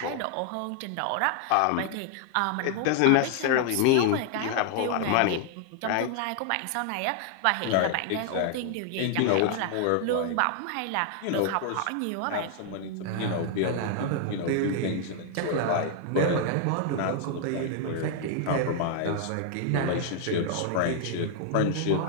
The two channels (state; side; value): different; both; correlation 0.00